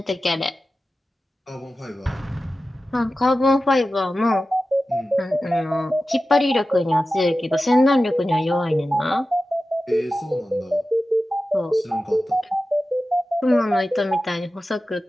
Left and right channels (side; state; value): both; normal; correlation 0.94